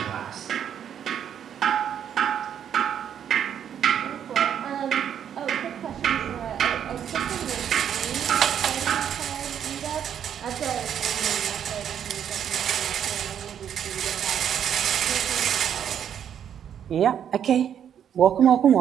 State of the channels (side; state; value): left; quieter; 9.0 dB